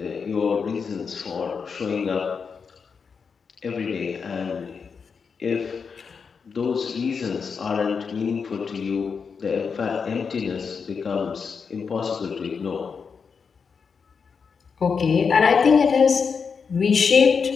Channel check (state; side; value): quieter; right; 5.8 dB